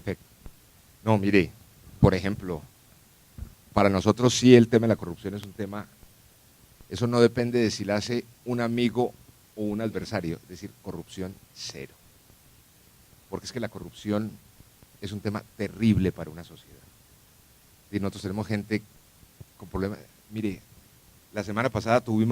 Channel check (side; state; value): both; identical; correlation 1.00